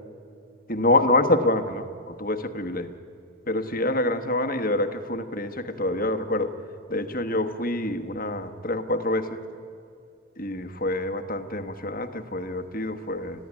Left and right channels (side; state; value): both; normal; correlation 0.00